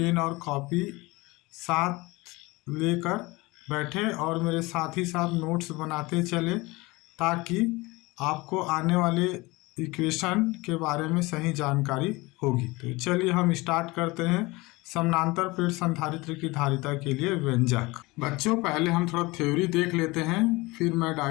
और कॉपी साथ लेकर बैठें और मेरे साथ ही साथ नोट्स बनाते चलें ताकि आपको आने वाले इक्वेशन के बारे में सही जानकारी होगी। तो चलिए हम स्टार्ट करते हैं समानांतर प्लेट संधारित्र की धारिता के लिए व्यंजक। बच्चों, पहले हम थोड़ा थ्योरी देख लेते हैं, फिर मैं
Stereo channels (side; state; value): right; quieter; 22.7 dB